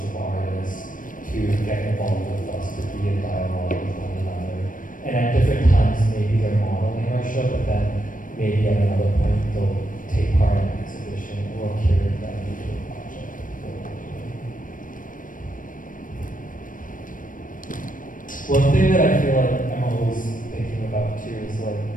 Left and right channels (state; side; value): late; right; 0.39 ms